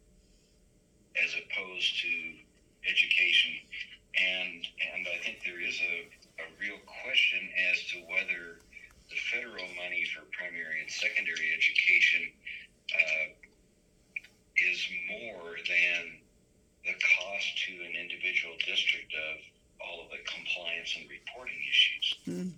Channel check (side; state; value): both; identical; correlation 1.00